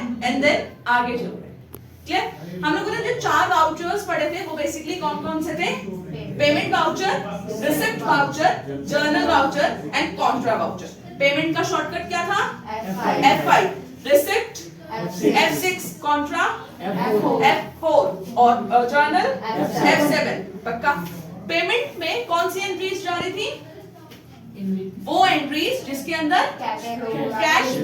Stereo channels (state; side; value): identical; both; correlation 1.00